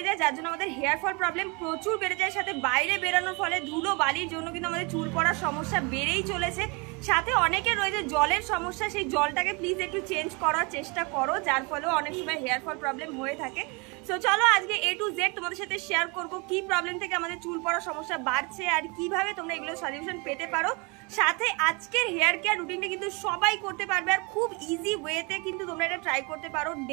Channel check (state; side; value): quieter; left; 29.6 dB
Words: যায়, যার জন্য আমাদের হেয়ার ফল প্রবলেম প্রচুর বেড়ে যায়। সাথে বাইরে বেরানোর ফলে ধুলো বালির জন্য কিন্তু আমাদের চুল পড়ার সমস্যা বেড়েই চলেছে। সাথে অনেকের রয়েছে জলের সমস্যা, সেই জলটাকে প্লিজ একটু চেঞ্জ করার চেষ্টা করো, যার ফলেও অনেক সময় হেয়ার ফল প্রবলেম হয়ে থাকে। সো চলো আজকে A to Z তোমাদের সাথে শেয়ার করবো কি প্রবলেম থেকে আমাদের চুল পড়ার সমস্যা বাড়ছে আর কিভাবে তোমরা এগুলো সলিউশন পেতে পারো। সাথে আজকের হেয়ার কেয়ার রুটিনটা কিন্তু সবাই করতে পারবে আর খুব ইজি ওয়েতে কিন্তু তোমরা এটা ট্রাই করতে পারো,